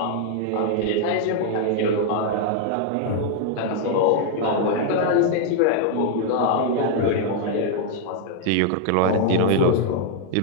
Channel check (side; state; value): both; different; correlation 0.00